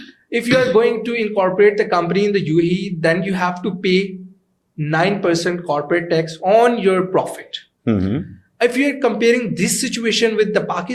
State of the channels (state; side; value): identical; both; correlation 1.00